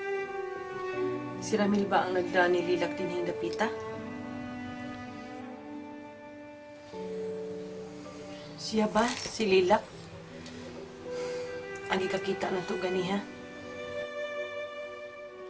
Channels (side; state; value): both; identical; correlation 1.00